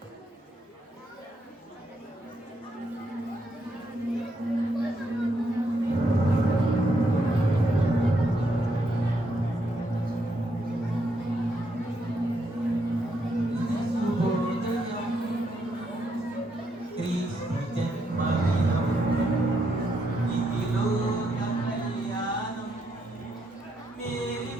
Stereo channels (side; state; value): both; normal; correlation 0.77